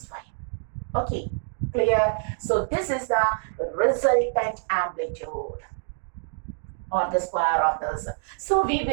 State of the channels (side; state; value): left; silent; 61 dB below the other